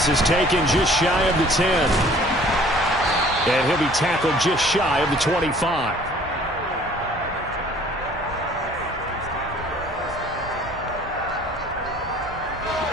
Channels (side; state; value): both; normal; correlation 0.53